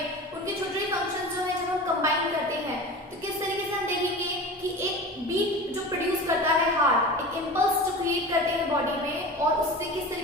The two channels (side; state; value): both; normal; correlation 0.33